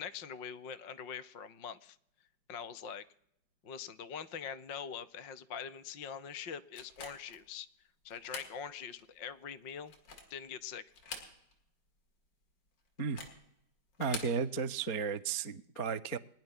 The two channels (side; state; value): right; late; 4.4 ms